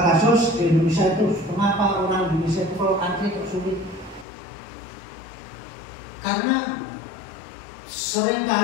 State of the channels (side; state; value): right; drops out; at 4.2 s